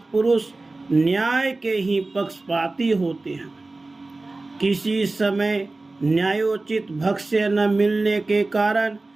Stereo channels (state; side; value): quieter; left; 3.2 dB